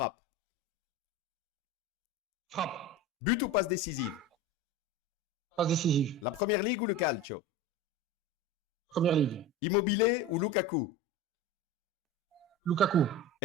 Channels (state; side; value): normal; both; correlation 0.28